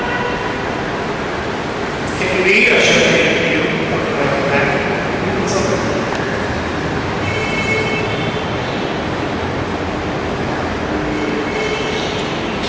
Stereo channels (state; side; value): identical; both; correlation 1.00